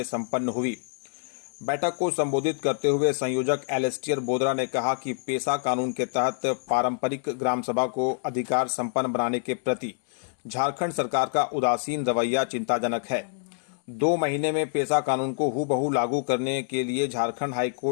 संपन्न हुई। बैठक को संबोधित करते हुए संयोजक एलेस्टियर बोदरा ने कहा कि पेशा कानून के तहत पारंपरिक ग्राम सभा को अधिकार संपन्न बनाने के प्रति झारखंड सरकार का उदासीन रवैया चिंताजनक है। 2 महीने में पेशा कानून को हूबहू लागू करने के लिए झारखंड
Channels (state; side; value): silent; right; 61 dB below the other